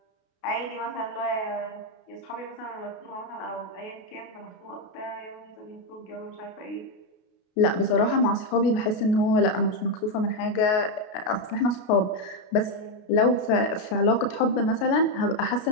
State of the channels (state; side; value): late; right; 32 ms